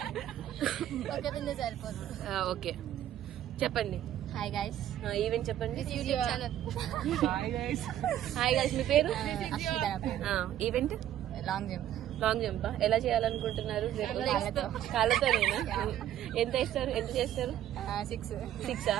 ఓకే చెప్పండి. Hi guys. ఈవెంట్ చెప్పండి. YouTube channel. Hi guys. మీ పేరు? Event long jump. Long jump ఎలా చేయాలనుకుంటున్నారు? కాళ్ళతో. ఎంత ఇస్తారు? ఎంత చేస్తారు? 6.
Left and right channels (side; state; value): left; quieter; 11.8 dB